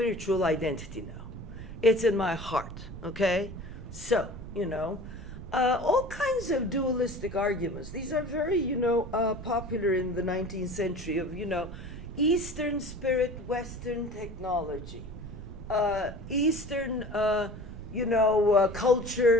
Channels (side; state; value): right; noise; rumble, 12 dB below the sound